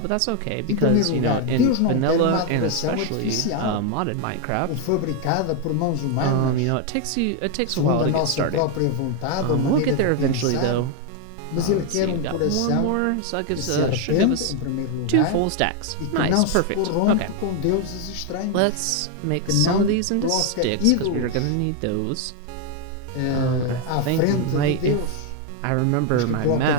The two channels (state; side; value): different; both; correlation 0.01